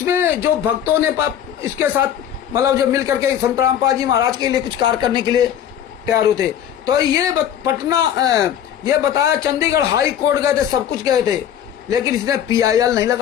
जो भक्तों ने इसके साथ मतलब जो मिल करके संतराम पाल जी महाराज के लिए कुछ कार्य करने के लिए तैयार होते, तो ये ये बताया चंडीगढ़ हाई कोर्ट गए थे, सब कुछ गए थे, लेकिन इसने PIL नहीं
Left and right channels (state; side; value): quieter; right; 10.0 dB